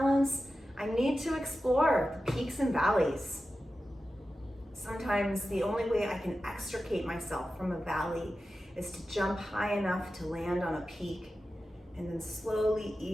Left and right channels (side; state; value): both; normal; correlation 0.93